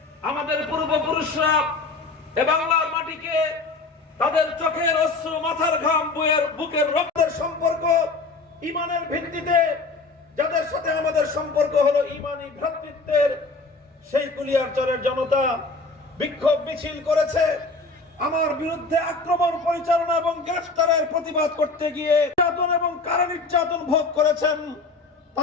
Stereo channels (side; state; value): right; quieter; 3.7 dB